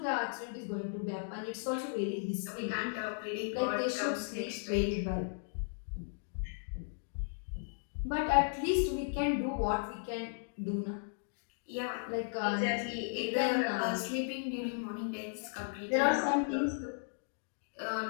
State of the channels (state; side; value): silent; right; digital silence